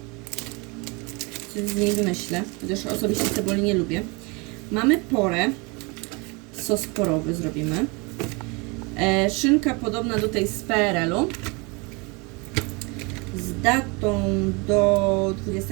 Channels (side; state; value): left; quieter; 28.9 dB